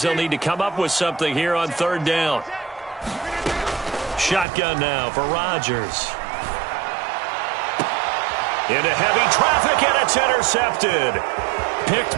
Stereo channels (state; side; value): drops out; left; at 4.5 s